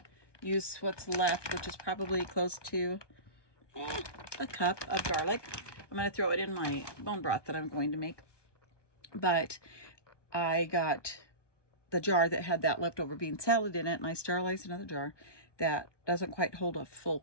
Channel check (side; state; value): right; late; 1.2 ms